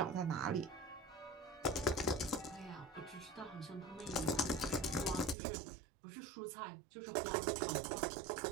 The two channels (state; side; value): drops out; left; at 5.4 s